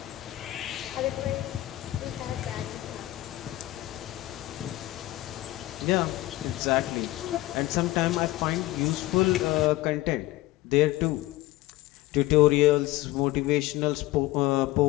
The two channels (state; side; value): quieter; right; 17.1 dB